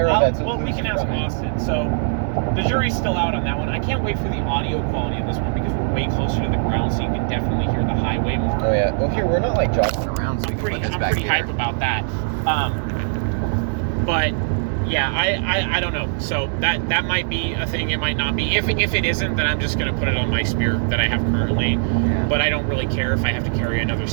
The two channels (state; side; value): silent; left; digital silence